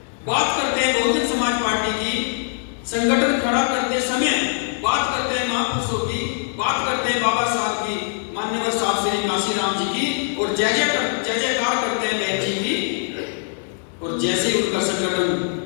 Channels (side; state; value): right; silent; digital silence